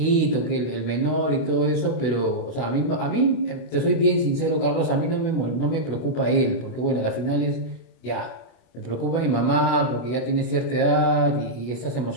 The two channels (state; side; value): late; right; 24 ms